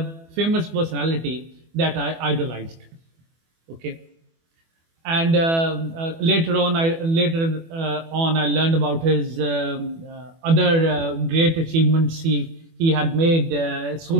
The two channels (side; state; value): left; late; 24 ms